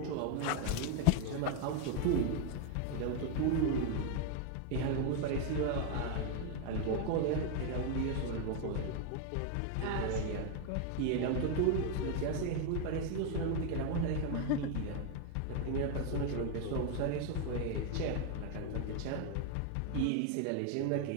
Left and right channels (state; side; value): different; both; correlation 0.01